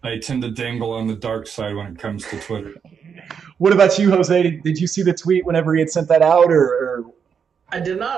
I tend to dangle on the dark side when it comes to Twitter. What about you, Jose? Did you see the tweet whenever he had sent that out, or? I did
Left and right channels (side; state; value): left; quieter; 6.9 dB